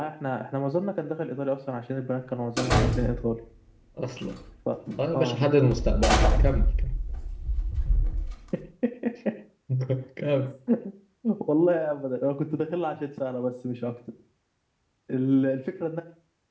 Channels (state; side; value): identical; both; correlation 1.00